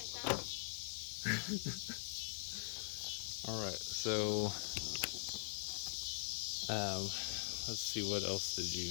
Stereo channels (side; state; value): right; silent; digital silence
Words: found. Alright, so let's see, what else did